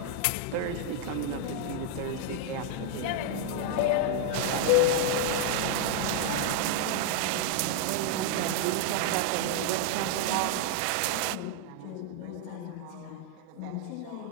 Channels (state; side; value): different; both; correlation 0.00